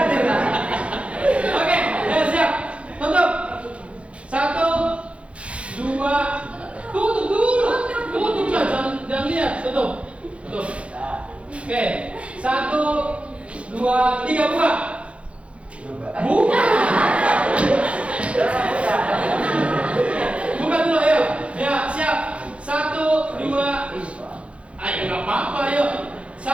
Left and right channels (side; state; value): left; late; 0.061 ms